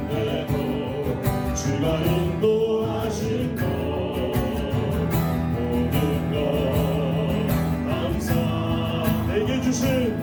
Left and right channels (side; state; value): both; identical; correlation 1.00